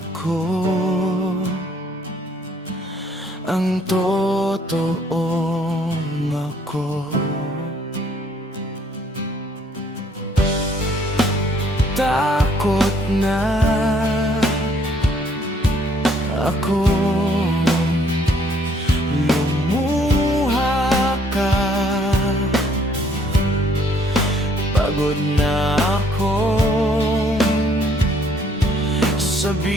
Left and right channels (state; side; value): normal; both; correlation 0.64